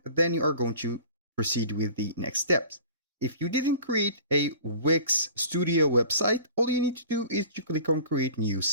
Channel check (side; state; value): both; inverted; correlation -0.44